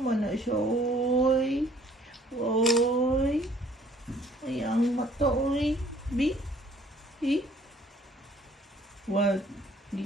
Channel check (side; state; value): both; normal; correlation 0.58